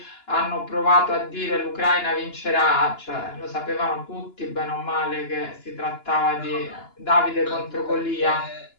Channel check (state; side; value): late; right; 2.9 ms